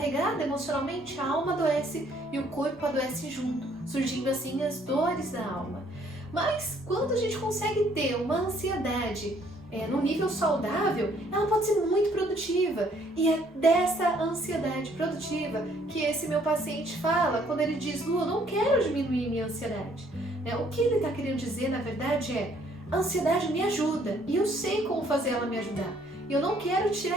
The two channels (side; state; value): both; normal; correlation 0.64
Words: emocionalmente, a alma adoece e o corpo adoece junto, surgindo assim as dores da alma. Mas quando a gente consegue ter uma ansiedade no nível saudável, ela pode ser muito produtiva. E é dessa ansiedade produtiva que esse meu paciente fala quando ele diz: Lu, eu não quero diminuir minha ansiedade. O que ele está querendo dizer, na verdade, é: a ansiedade me ajuda e eu sei como fazer ela me ajudar. E eu não quero